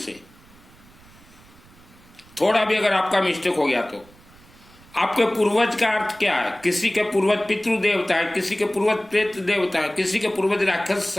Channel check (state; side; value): noise; right; rumble, 26 dB below the sound